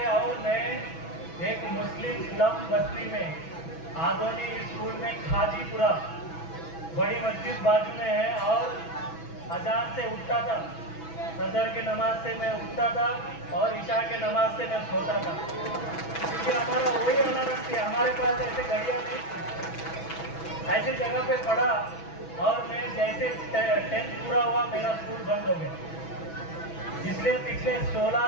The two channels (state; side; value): late; right; 6.1 ms